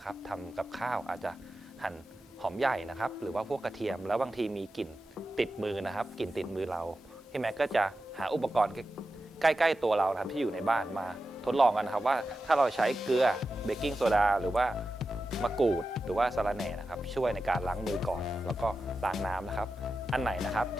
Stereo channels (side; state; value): both; normal; correlation 0.92